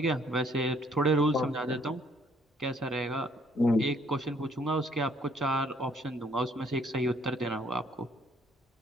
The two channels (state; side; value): normal; both; correlation 0.64